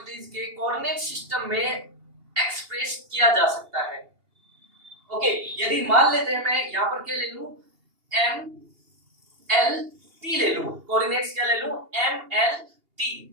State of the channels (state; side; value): late; left; 2.8 ms